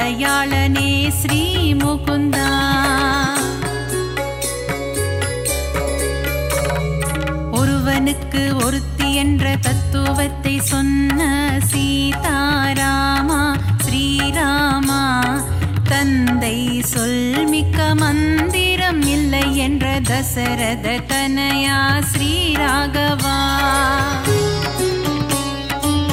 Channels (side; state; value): both; identical; correlation 1.00